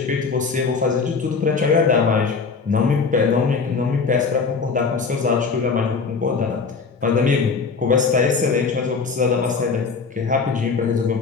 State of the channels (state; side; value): quieter; right; 4.9 dB